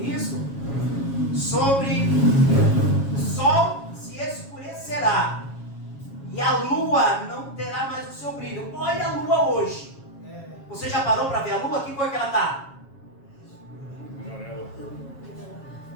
isso, sobre o sol se escurecerá e a lua não terá mais o seu brilho. Olha a lua hoje. Você já parou para ver a lua? Que cor que ela está? Amarela.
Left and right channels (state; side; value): late; right; 7.3 ms